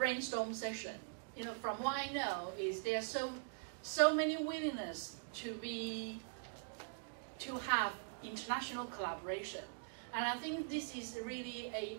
session. You know, from what I know, is there are so many willingness to have international collaboration. And I think this is really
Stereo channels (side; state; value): left; silent; digital silence